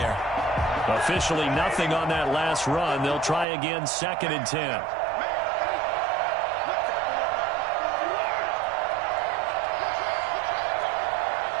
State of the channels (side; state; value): left; drops out; at 3.5 s